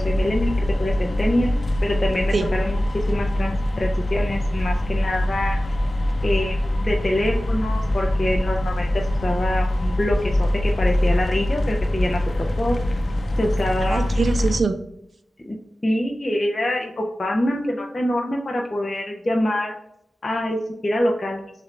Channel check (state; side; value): normal; both; correlation 0.95